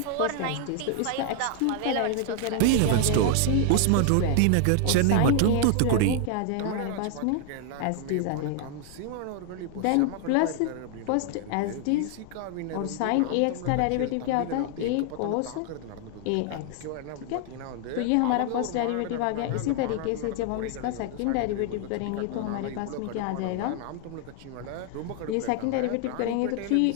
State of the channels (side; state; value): both; different; correlation 0.00